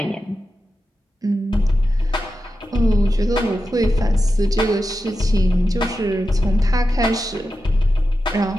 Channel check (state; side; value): normal; both; correlation 0.91